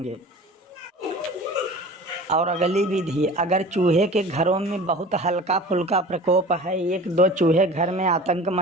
और अगली विधि, अगर चूहे के घरों में बहुत हल्का फुल्का प्रकोप है, 1-2 चूहे घर में आतंक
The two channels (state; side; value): normal; both; correlation 0.40